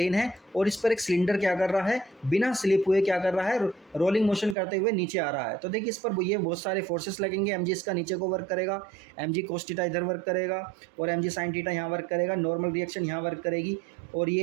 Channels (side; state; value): left; drops out; at 4.5 s